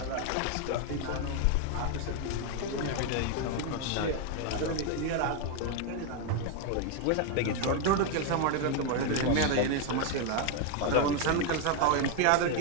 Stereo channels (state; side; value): different; both; correlation 0.01